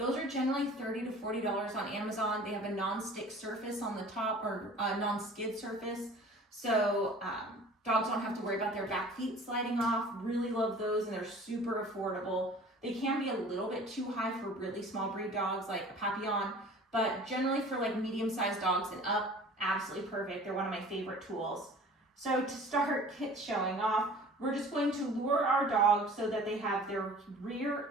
are generally $30 to $40 on Amazon. They have a non-stick surface on the top, or a non-skid surface, so dogs don't have to worry about their back feet sliding off. Really love those, and they're super affordable. They can be a little bit too high for really small breed dogs like a Papillon, but generally for like medium-sized dogs and up, absolutely perfect. They're one of my favorite tools. So to start showing off, we're just going to lure our dog so that they have their rear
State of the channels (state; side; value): normal; both; correlation 0.45